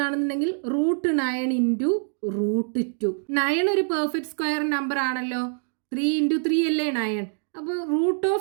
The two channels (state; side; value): silent; left; digital silence